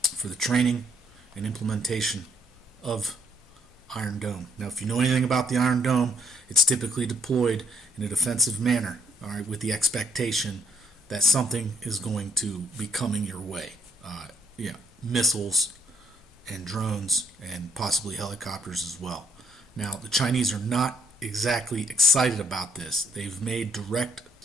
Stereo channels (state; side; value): normal; both; correlation 0.69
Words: for the training and implementation of Iron Dome. Now, if you know anything about the Iron Dome, it's typically deployed in a defensive manner, all right, with the expectation that something is going to be coming your way. Missiles and drones and possibly helicopters as well. Now, the Chinese are not exactly excited about this. They've made direct